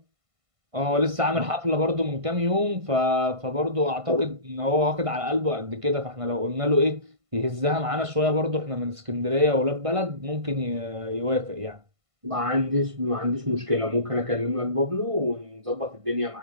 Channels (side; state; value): left; late; 1.5 ms